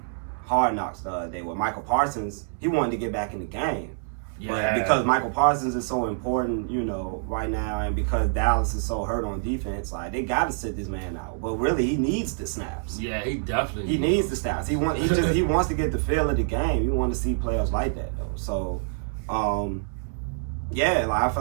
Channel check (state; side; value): silent; left; 61 dB below the other